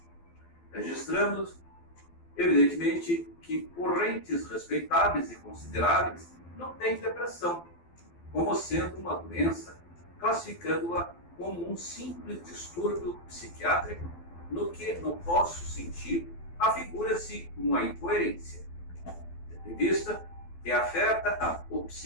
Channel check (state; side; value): late; right; 12 ms